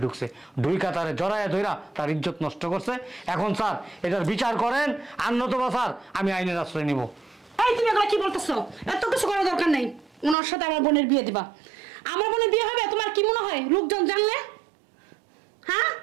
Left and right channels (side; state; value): left; drops out; at 10.4 s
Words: ঢুকছে, ঢুইকা তারে জড়াইয়া ধইরা তার ইজ্জত নষ্ট করছে। এখন স্যার এটার বিচার করেন, আর নতুবা স্যার আমি আইনের আশ্রয় নিব। এই তুমি এগুলো কি বলতেছো? এত কিছু করার দরকার নেই। ওনার সাথে আমার বোনের বিয়ে দিবা। আমার বোনের বিয়ে হবে তোমার কি মনে হয় লোকজন জানলে? হ্যাঁ